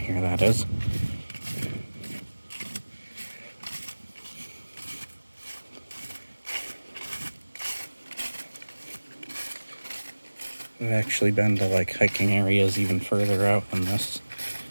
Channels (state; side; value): inverted; both; correlation -1.00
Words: that is. I've actually been to like hiking areas even further out than this.